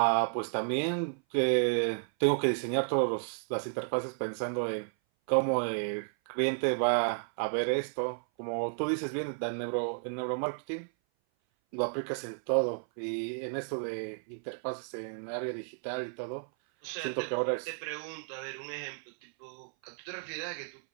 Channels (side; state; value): left; silent; 56 dB below the other